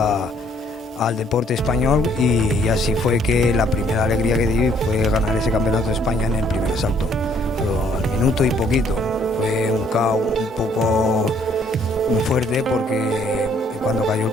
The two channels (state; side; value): normal; both; correlation 0.64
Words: al deporte español, y así fue que la primera alegría que di fue ganar ese campeonato de España en el primer asalto, pero al minuto y poquito. Fue un KO un poco muy fuerte, porque cuando cayó el